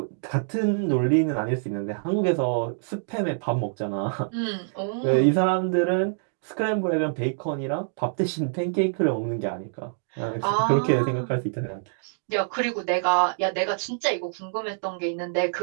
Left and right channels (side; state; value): left; silent; digital silence